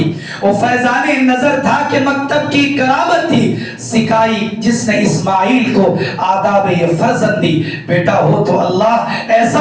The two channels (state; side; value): identical; both; correlation 1.00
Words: وہ فیضان نظر تھا کہ مکتب کی کرامت تھی. سکھائی جس نے اسماعیل کو آداب فرزند دی. بیٹا ہو تو اللہ